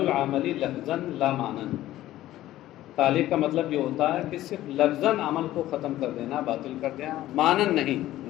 العمل لفظاً لا معنن۔ تعلیق کا مطلب یہ ہوتا ہے کہ صرف لفظاً عمل کو ختم کر دینا، باطل کر دینا، معنن نہیں،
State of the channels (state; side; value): quieter; right; 14.6 dB